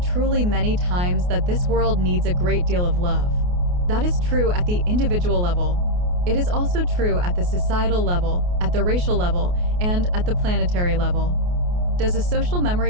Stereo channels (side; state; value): left; late; 28 ms